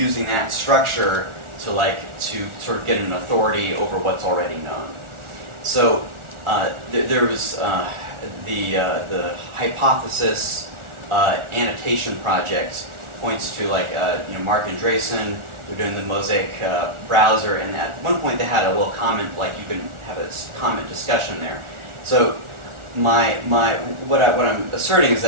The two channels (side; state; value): left; late; 1.4 ms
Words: that structure to sort of get an authority over what's already known. So there was the hypothesis annotation project points to Mark Andreessen. They're doing the Mosaic browser, and at one point they had a little comment, like you can have a comment discussion there. So what I'm asserting is